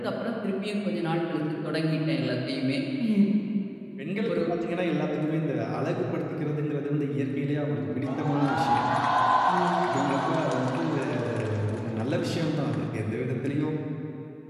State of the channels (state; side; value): identical; both; correlation 1.00